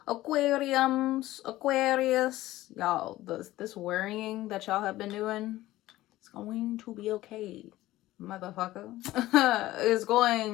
Aquarius, y'all, this worrying that y'all have been doing, it's going to be okay, motherfucker. It's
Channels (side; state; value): right; quieter; 16.2 dB